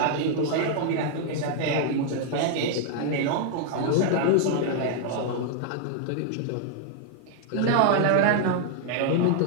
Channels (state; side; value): different; both; correlation 0.00